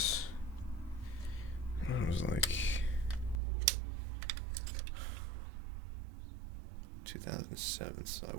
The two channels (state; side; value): drops out; left; at 3.4 s